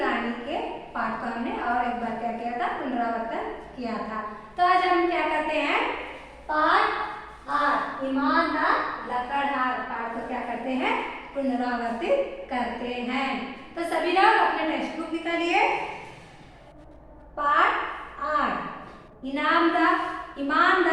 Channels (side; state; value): both; identical; correlation 1.00